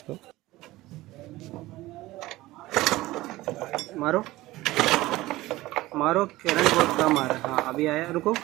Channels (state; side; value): quieter; left; 18.1 dB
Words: मारो मारो, करंट बहुत कम आ रहा है। हाँ अभी आया, रुको